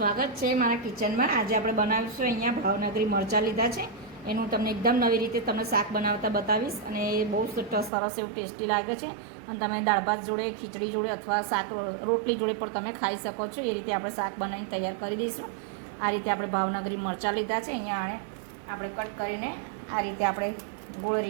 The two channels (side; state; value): left; drops out; at 7.9 s